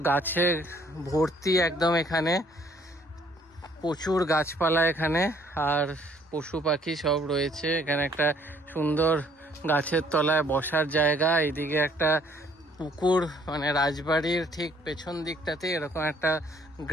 গাছে ভর্তি একদম, এখানে প্রচুর গাছপালা এখানে, আর পশু পাখি সব রয়েছে। এখানে একটা সুন্দর গাছের তলায় বসার জায়গা, এইদিকে একটা পুকুর, মানে রাজবাড়ির ঠিক পেছন দিকটাতে এরকম একটা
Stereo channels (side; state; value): both; normal; correlation 0.62